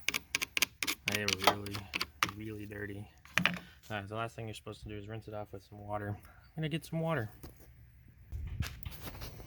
They were really dirty. So the last thing you're supposed to do is rinse it off with some water. I'm gonna get some water.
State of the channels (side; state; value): both; identical; correlation 1.00